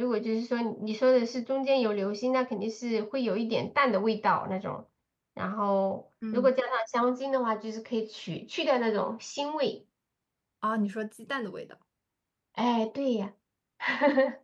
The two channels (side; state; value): both; identical; correlation 1.00